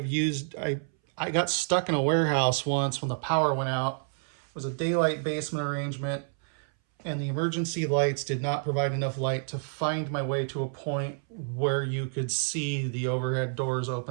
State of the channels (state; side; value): silent; left; 59 dB below the other